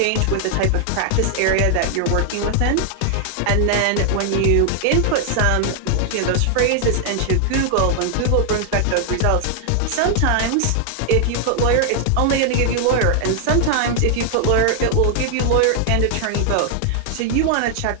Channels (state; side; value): different; both; correlation 0.00